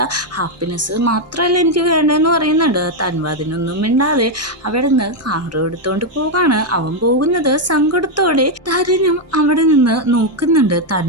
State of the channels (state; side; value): normal; both; correlation 0.02